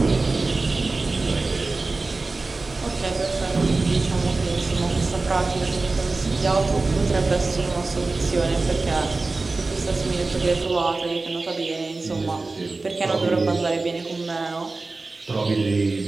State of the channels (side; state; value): left; quieter; 3.5 dB